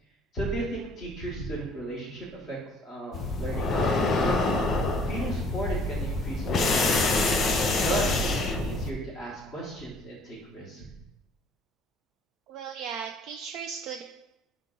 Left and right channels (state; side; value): normal; both; correlation 0.57